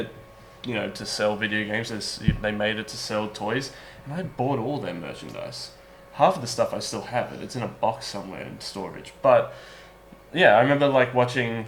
to sell video games. They made it to sell toys, and I bought all their merchandise. Half of the stuff I still have it. It's in a box somewhere in storage. But yeah, I remember watching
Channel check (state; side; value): identical; both; correlation 1.00